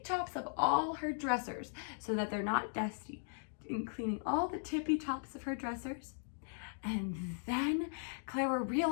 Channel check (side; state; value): right; silent; digital silence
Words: tops of all her dressers so that they're not dusty. And cleaning all the tippy tops of her dressers. And then Clara